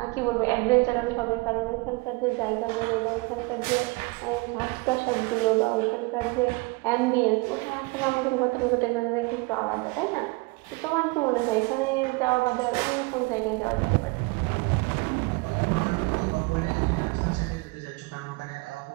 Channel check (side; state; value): left; quieter; 26.4 dB